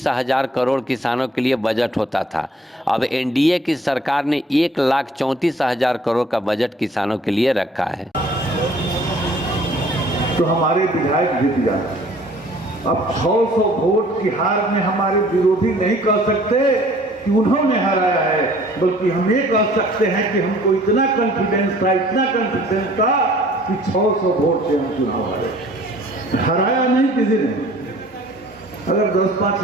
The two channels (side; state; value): both; normal; correlation 0.54